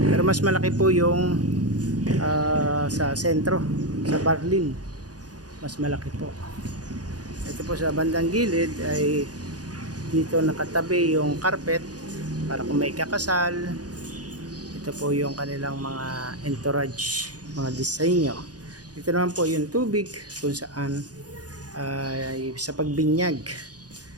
Pero mas malaki po yung sa sentro, sa Barlin. Mas malaki po. Ito po sa bandang gilid ay dito nakatabi yung carpet para kung may kakasal. Ito po yung kanilang mga entourage, mga disenyo. Dito naman po yung tubig kung saan ay sa pagbinyag.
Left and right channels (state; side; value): late; left; 0.68 ms